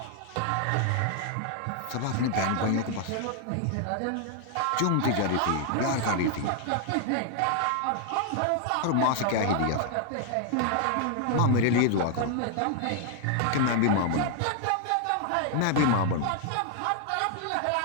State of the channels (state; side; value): different; both; correlation 0.00